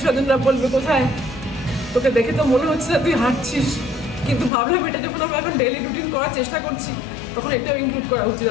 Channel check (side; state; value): right; drops out; at 4.5 s